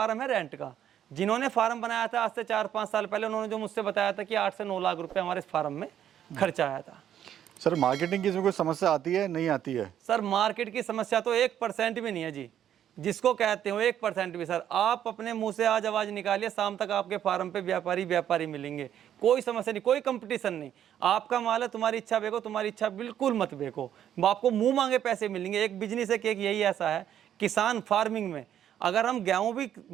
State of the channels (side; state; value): left; quieter; 10.3 dB